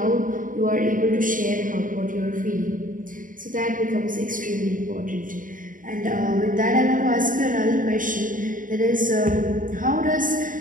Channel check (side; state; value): left; late; 0.39 ms